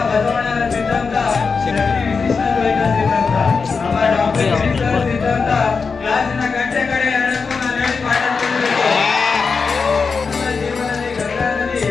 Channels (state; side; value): quieter; right; 5.0 dB